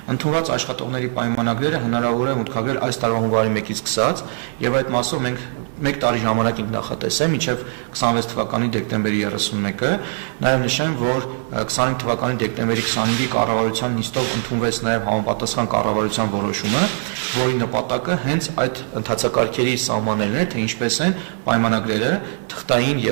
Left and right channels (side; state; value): left; silent; 60 dB below the other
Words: Ընդունված աշխատողների պայմանագրերը հնարավոր է մուտքագրել այս տարվա հունվարի 1-ից սկսած եւ այդ մասով մենք 1 տարի ժամանակ ենք նախատեսել մինչև 26 թվականի դեկտեմբերի 31-ը։ Նաեւ նշեմ, որ 25 թվականի դեկտեմբերի 25-ի կառավարության նիստով ընդունվեց նաեւ համապատասխան կառավարության որոշումը, որի նպատակը հենց այդ ընթացակարգերի սահմանելն է, թե ինչպես են պայմանագրերը թղթային